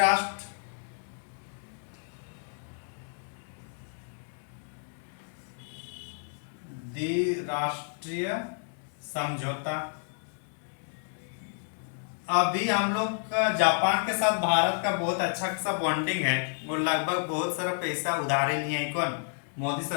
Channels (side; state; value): right; silent; digital silence